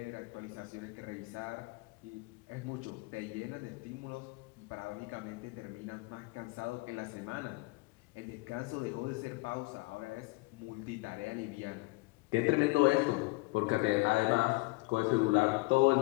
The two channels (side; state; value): right; quieter; 24.9 dB